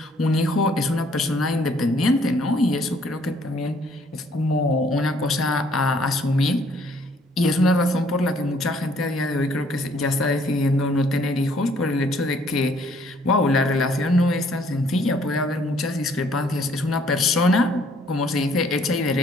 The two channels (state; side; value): normal; both; correlation 0.63